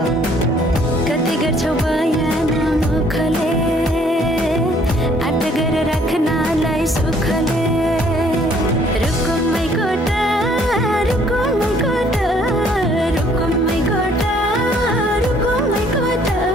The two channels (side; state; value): both; normal; correlation 0.62